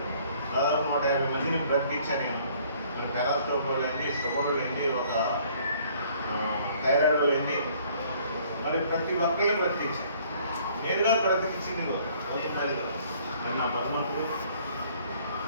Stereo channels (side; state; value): both; inverted; correlation -0.59